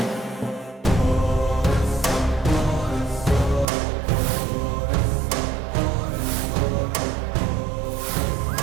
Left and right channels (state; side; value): drops out; left; at 3.7 s